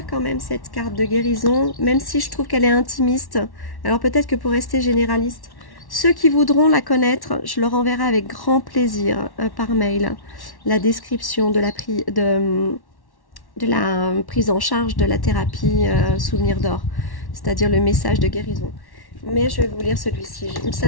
quand même cette carte de guérison, même si je trouve qu'elle est intimiste. Alors peut-être que pour rester généraliste, ceux qui voudront la connaître, je leur enverrai avec grand plaisir par mail la description de la prise en charge de la thérapie souvenir d'or, c'est-à-dire le message de guérison. Mais je vais vous lire celui-ci, ça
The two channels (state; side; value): late; right; 1.1 ms